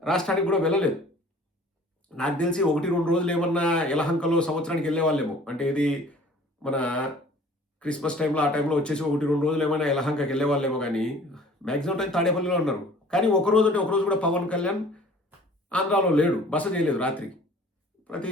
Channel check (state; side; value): normal; both; correlation 0.49